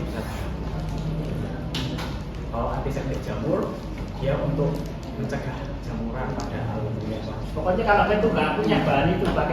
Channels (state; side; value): identical; both; correlation 1.00